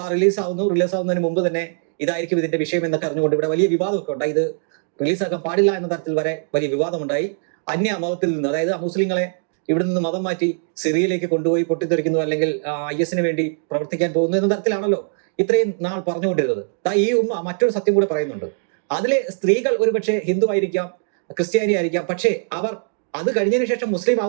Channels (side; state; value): left; silent; digital silence